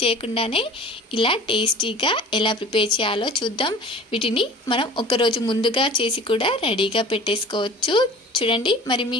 చేయకుండానే ఇలా టేస్టీగా ఎలా ప్రిపేర్ చేయాలో చూద్దాం. వీటిని మనం ఒకరోజు ముందుగా చేసి కూడా రెడీగా పెట్టేసుకోవచ్చు. చూడండి, మరి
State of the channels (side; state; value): both; normal; correlation 0.42